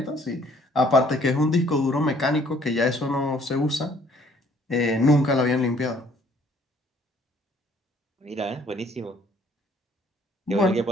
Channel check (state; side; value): normal; both; correlation 0.60